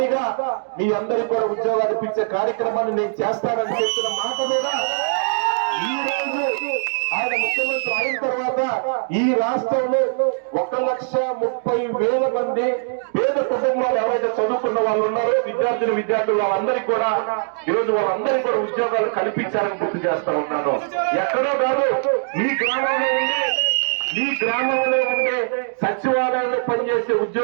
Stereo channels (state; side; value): silent; left; digital silence